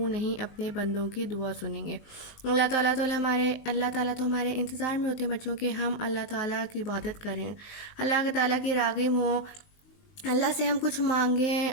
نہیں اپنے بندوں کی دعا سنیں گے. اللہ تعالیٰ تو ہمارے انتظار میں ہوتے ہیں بچوں کہ ہم اللہ تعالیٰ کی عبادت کریں، اللہ تعالیٰ کی راغب ہوں، اللہ سے ہم کچھ مانگیں،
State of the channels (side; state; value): right; late; 19 ms